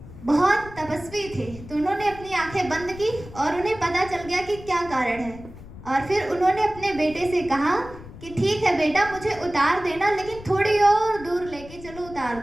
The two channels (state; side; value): noise; left; rumble, 16 dB below the sound